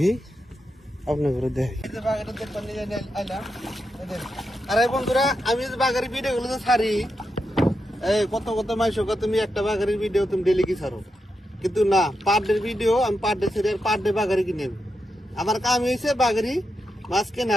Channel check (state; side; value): normal; both; correlation 0.86